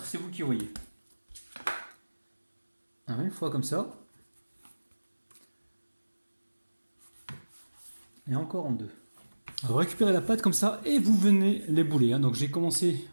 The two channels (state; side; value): inverted; both; correlation -1.00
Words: c'est vous qui voyez. Alors, une fois comme ça. Et encore en 2. Vous récupérez la pâte comme ça et vous venez l'ébouler. Donc j'ai commencé